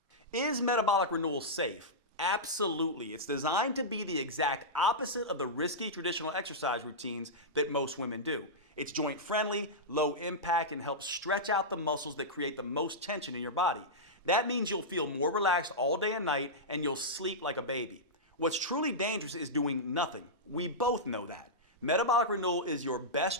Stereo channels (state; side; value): normal; both; correlation -0.12